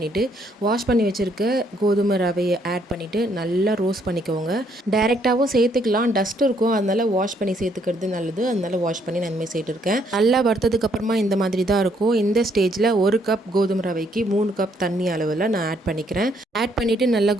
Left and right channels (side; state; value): both; normal; correlation 0.70